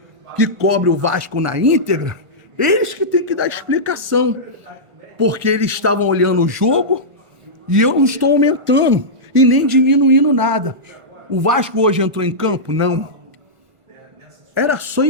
que cobre o Vasco na íntegra, eles que têm que dar explicação. Porque eles estavam olhando o jogo e eu não estou aumentando e nem diminuindo nada. O Vasco hoje entrou em campo? Não. Era só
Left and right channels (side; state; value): left; late; 1.5 ms